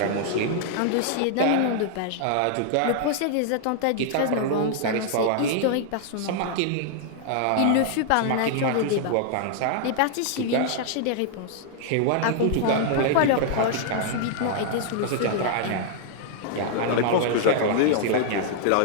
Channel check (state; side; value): different; both; correlation -0.01